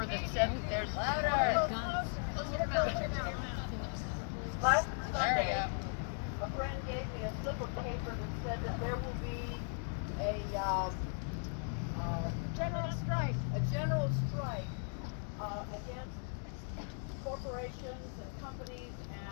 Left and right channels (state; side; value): silent; right; 53 dB below the other